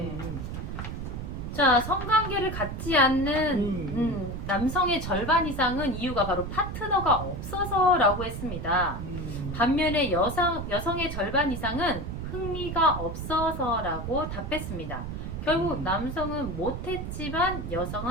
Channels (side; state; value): right; noise; rumble, 6 dB below the sound